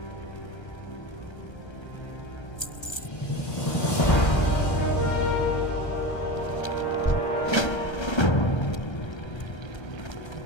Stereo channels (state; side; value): late; right; 1.3 ms